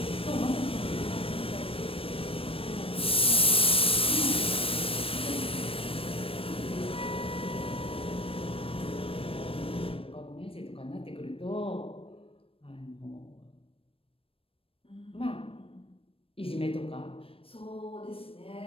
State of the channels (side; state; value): right; late; 0.27 ms